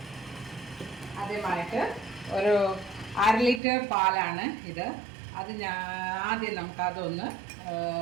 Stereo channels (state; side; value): drops out; left; at 3.6 s